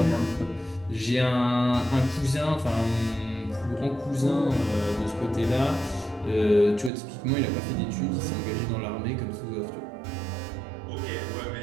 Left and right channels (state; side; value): drops out; left; at 6.9 s